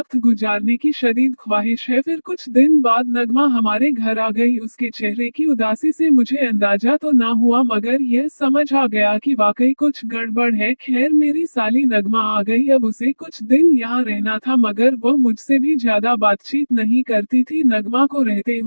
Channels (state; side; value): inverted; both; correlation -1.00